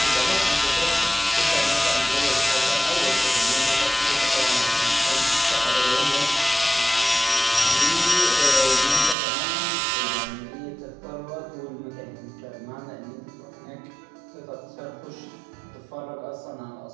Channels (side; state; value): left; drops out; at 9.2 s